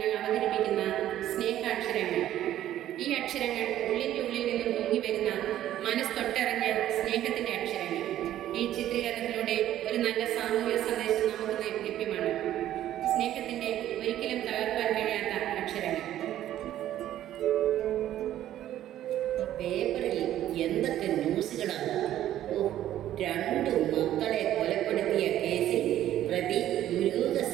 അവതരിപ്പിക്കുന്ന സ്നേഹാക്ഷരങ്ങൾ. ഈ അക്ഷരങ്ങൾ ഉള്ളിൻ്റെ ഉള്ളിൽ നിന്നും പൊങ്ങി വരുന്ന മനസ്തൊട്ടറിഞ്ഞ സ്നേഹത്തിൻ്റെ അക്ഷരങ്ങൾ. ഈ ചിത്രീകരണത്തിലൂടെ ഒരു നല്ല സാമൂഹിക സന്ദേശം നമുക്ക് ലഭ്യമാണ്. സ്നേഹത്തിൻ്റെ ഒരിക്കലും തകർക്കാൻ കഴിയാത്ത അക്ഷരങ്ങൾ. പേപ്പറിൽ എന്തൊക്കെ ന്യൂസുകളാണ്! രണ്ടു മക്കളെ കൊലപ്പെടുത്തിയ കേസിൽ പ്രതി ദുരൂഹ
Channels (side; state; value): left; quieter; 12.4 dB